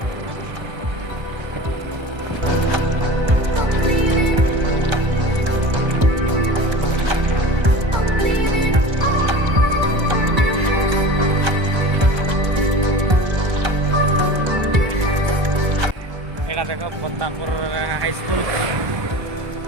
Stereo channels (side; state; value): left; late; 1.3 ms